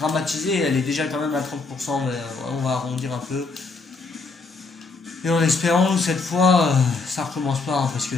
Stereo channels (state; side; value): quieter; right; 3.9 dB